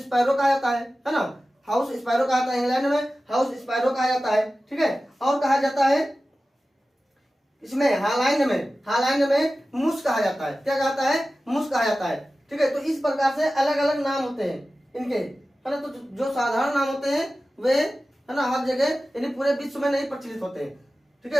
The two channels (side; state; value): both; normal; correlation 0.95